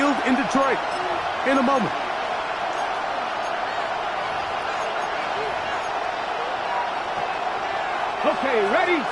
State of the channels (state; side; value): identical; both; correlation 1.00